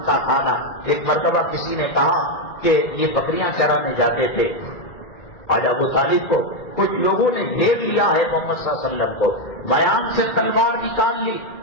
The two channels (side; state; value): right; late; 1.9 ms